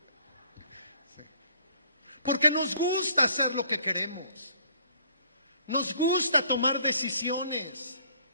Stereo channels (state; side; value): inverted; both; correlation -0.60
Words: Sí. Porque nos gusta hacer lo que queremos. Nos gusta tomar decisiones.